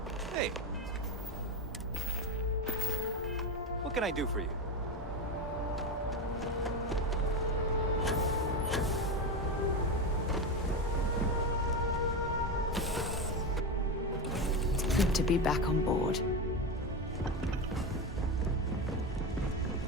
Hey. What can I do for you? It's good to be back on board.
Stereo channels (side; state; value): both; normal; correlation 0.16